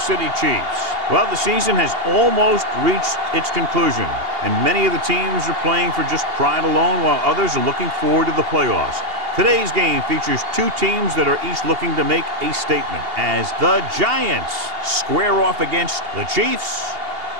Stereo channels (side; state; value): left; late; 2.8 ms